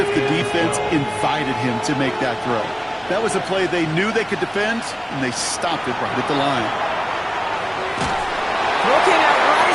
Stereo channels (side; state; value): both; identical; correlation 1.00